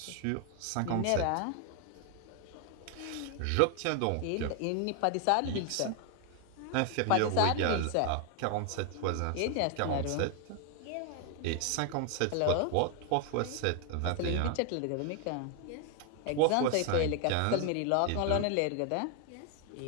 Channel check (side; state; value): both; different; correlation 0.00